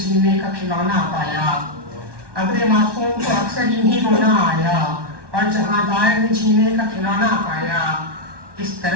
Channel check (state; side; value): late; left; 1.2 ms